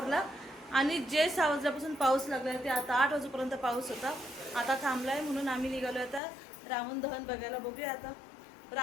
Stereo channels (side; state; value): right; drops out; at 6.2 s